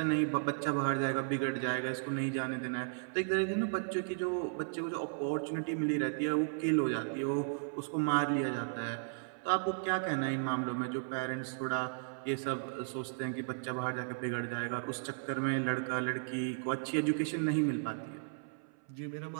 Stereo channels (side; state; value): left; silent; 54 dB below the other